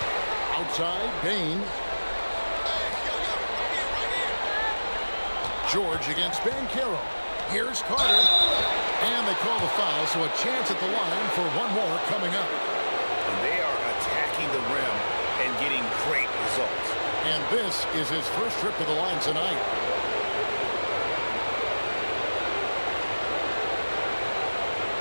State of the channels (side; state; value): both; inverted; correlation -1.00